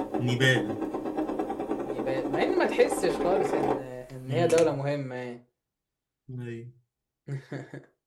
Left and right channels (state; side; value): identical; both; correlation 1.00